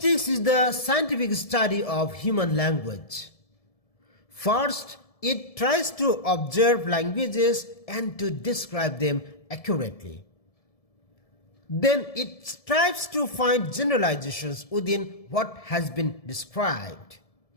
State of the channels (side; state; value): right; late; 1.7 ms